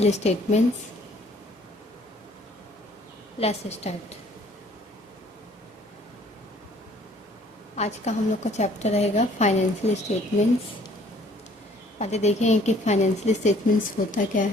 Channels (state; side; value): normal; both; correlation 0.58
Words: statements. Let's start. आज का हम लोग का चैप्टर रहेगा फाइनेंशियल स्टेटमेंट्स. पहले देखेंगे कि फाइनेंशियल स्टेटमेंट्स होता क्या